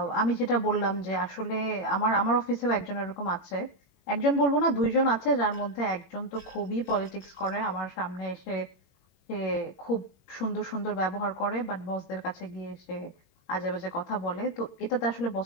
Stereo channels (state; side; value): late; right; 21 ms